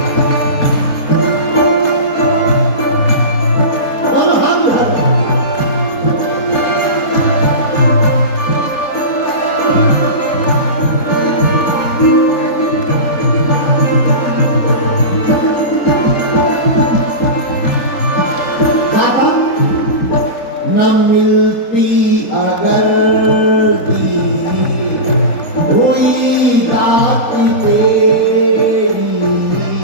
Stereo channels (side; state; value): right; late; 3.3 ms